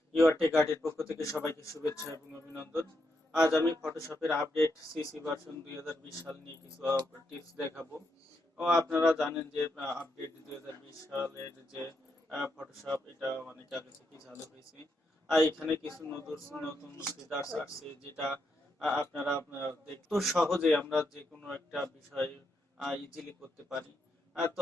your take আর্টের পক্ষ থেকে সবাইকে শুভেচ্ছা এবং অভিনন্দন। আজ আমি ফটোশপের আপডেট সিসি ভার্সন 2020 সাল নিয়ে কিছু টিপস দেখাবো। আপনারা জানেন যে আপডেট 2020 সালের যে ফটোশপ এটা অনেক আগে থেকেই চালু হয়েছে। আর এখানে কিছু নতুন নতুন ফিচার্স আসছে যেটা আপনারা দেখতে সহজে আমরা যে কোনো একটা বিষয় ইজিলি করতে পারি। তো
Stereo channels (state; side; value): normal; both; correlation 0.82